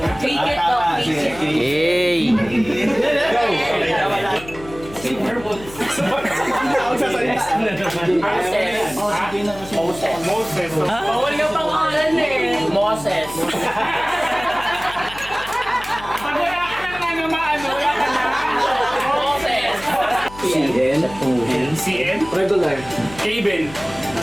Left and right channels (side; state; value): left; noise; hum, 17 dB below the sound